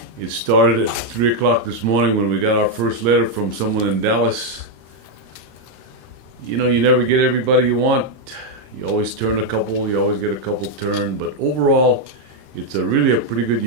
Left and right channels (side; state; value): left; late; 26 ms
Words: It started at 3 o'clock this morning when we got our first letter from someone in Dallas. You know, you never get everybody you want. You always turn a couple, you always get a couple turned, but overall, it's really a pretty good